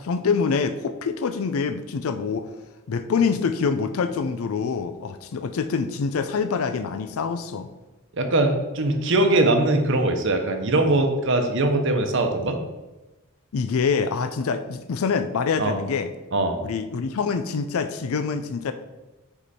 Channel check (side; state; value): both; normal; correlation 0.12